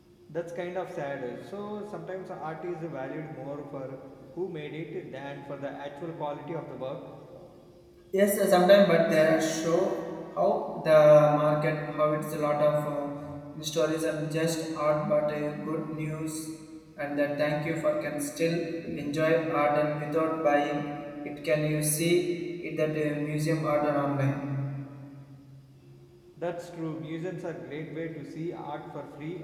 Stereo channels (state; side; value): identical; both; correlation 1.00